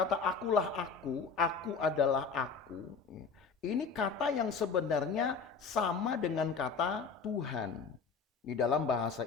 akulah aku adalah aku. Ini kata yang sebenarnya sama dengan kata Tuhan di dalam bahasa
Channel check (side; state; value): right; quieter; 5.3 dB